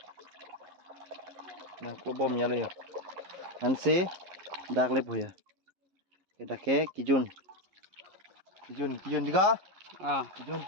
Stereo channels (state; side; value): late; left; 11 ms